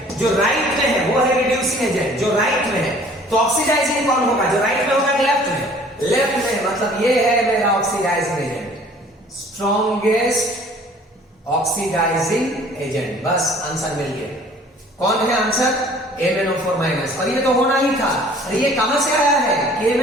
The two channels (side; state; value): both; normal; correlation 0.52